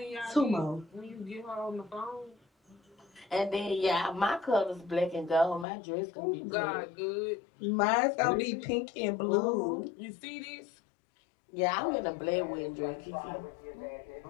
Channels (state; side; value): drops out; right; at 5.7 s